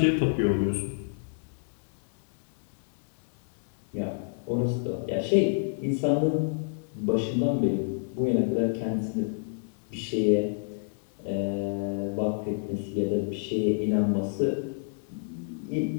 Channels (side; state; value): right; silent; 59 dB below the other